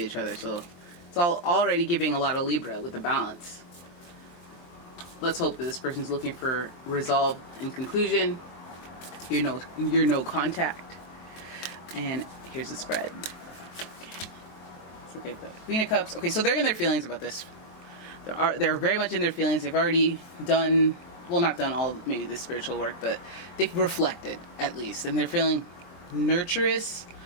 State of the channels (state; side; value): late; right; 23 ms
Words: each other, so it's already giving a lot of Libra with the balance. Let's hope that this person's looking for resolve and conclusion. You're no contact. And here's the spread. Let's look at the Queen of Cups. Okay, so they're in their feelings about this. They're very much in their feelings. They've already done, well, not done all maybe the spiritual work, but they've reflected at least, and they're feeling nurturous